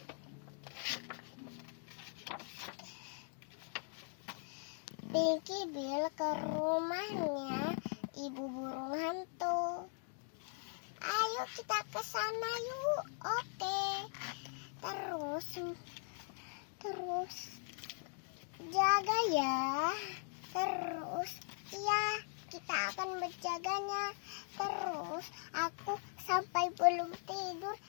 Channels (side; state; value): right; silent; 51 dB below the other